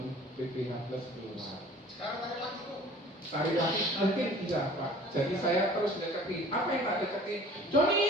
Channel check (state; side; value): normal; both; correlation 0.47